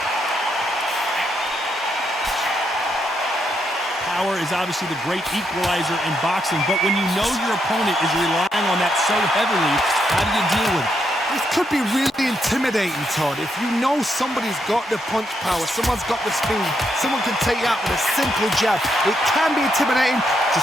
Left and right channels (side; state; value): both; normal; correlation 0.79